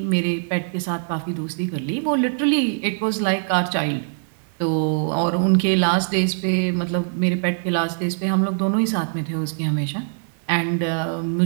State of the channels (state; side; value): silent; left; 58 dB below the other